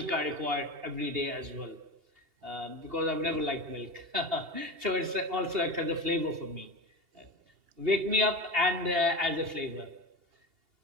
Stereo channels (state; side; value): late; left; 2.8 ms